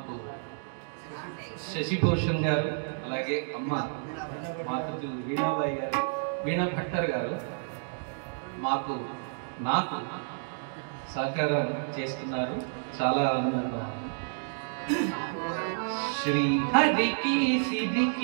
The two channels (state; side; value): silent; left; digital silence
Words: శశిభూషణ్ గారు అలాగే అమ్మ మాతృ వీణాబాయి గారు వీణా భట్టర్ గారు నాకు సహకారం చేస్తున్నారు. చాలా ఆనందంగా శ్రీ హరికి